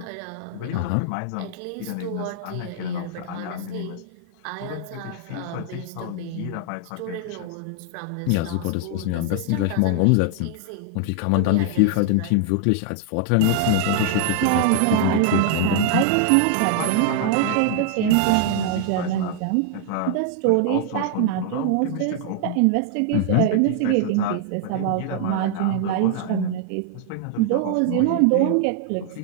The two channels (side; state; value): both; different; correlation 0.00